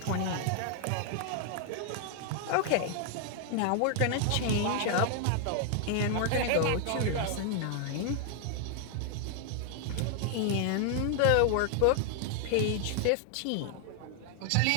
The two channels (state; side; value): different; both; correlation 0.00